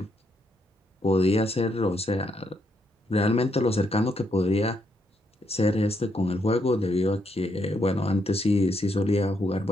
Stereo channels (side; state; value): both; normal; correlation 0.77